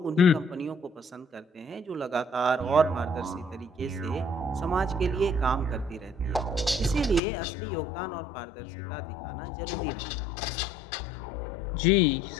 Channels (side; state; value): right; drops out; at 7.2 s